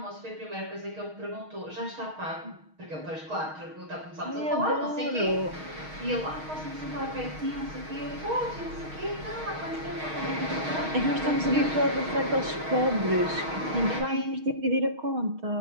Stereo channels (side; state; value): left; late; 6.4 ms